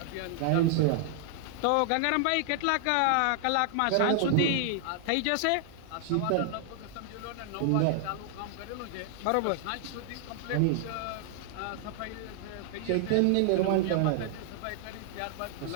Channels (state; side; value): different; both; correlation 0.00